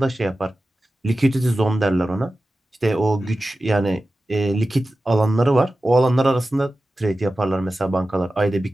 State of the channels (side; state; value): both; normal; correlation 0.95